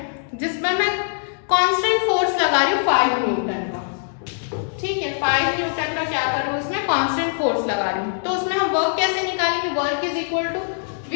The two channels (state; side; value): silent; right; digital silence